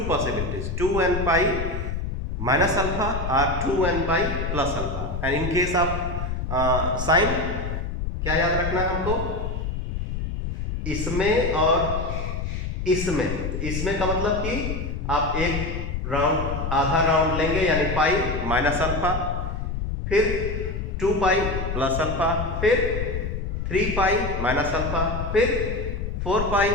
possibilities, 2 and pi minus alpha or 2 and pi plus alpha. And in case of sin क्या याद रखना है हमको? इसमें और इसमें का मतलब कि आप एक राउंड आधा राउंड लेंगे यानी पाई माइनस अल्फा, फिर 2 पाई प्लस अल्फा, फिर 3 पाई माइनस अल्फा, फिर 4 पाई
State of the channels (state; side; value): noise; left; rumble, 3 dB below the sound